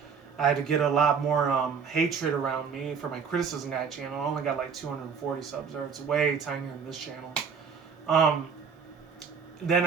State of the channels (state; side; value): quieter; left; 6.2 dB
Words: I had to get a lot more hatred around me for my Criticism Guy channel. I only got like 240 subs there. It's way tinier than this channel. Then